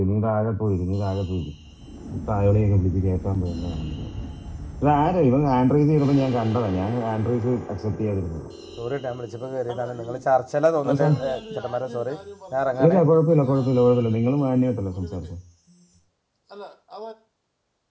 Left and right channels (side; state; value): both; identical; correlation 1.00